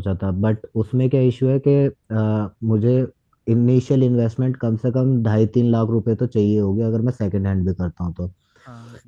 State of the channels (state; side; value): identical; both; correlation 1.00